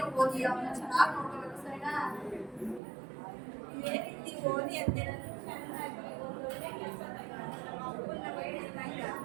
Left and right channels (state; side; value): drops out; left; at 2.8 s